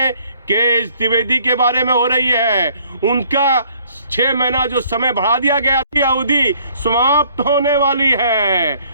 के.एस. द्विवेदी के बारे में हो रही है। उनका 6 महीना जो समय बढ़ा दिया गया थी, अवधि समाप्त होने वाली है।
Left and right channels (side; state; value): both; inverted; correlation -0.61